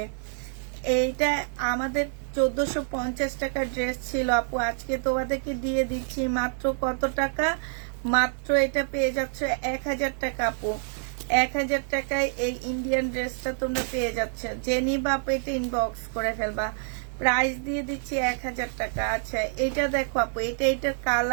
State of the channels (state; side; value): silent; left; digital silence